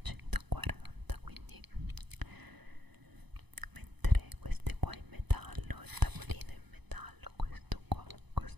140, quindi mentre queste qua in metallo, il tavolino in metallo, questo qua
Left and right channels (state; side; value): late; left; 0.99 ms